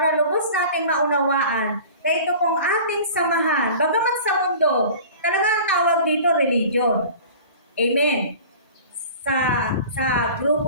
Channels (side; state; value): both; inverted; correlation -0.41